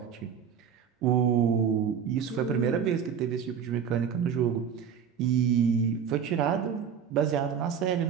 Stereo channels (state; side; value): quieter; left; 7.6 dB